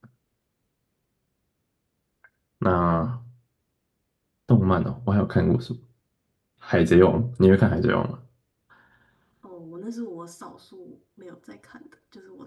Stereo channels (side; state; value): both; identical; correlation 1.00